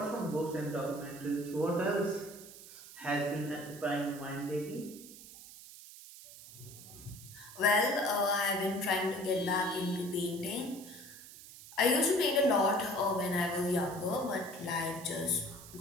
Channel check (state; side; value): noise; right; hiss, 16 dB below the sound